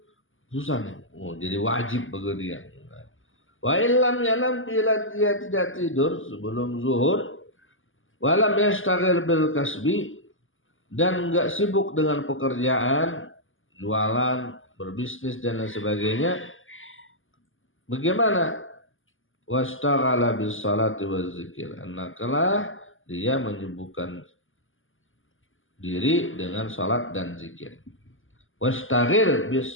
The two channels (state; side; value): late; right; 0.58 ms